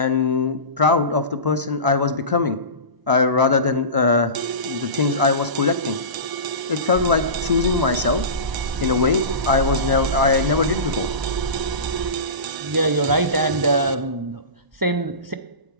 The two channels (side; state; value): left; late; 1.0 ms